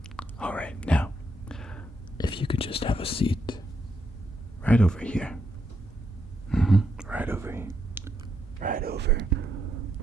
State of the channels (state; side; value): normal; both; correlation 0.79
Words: All right, now, if you could just have a seat right over here. Mm-hmm. Right over here. Right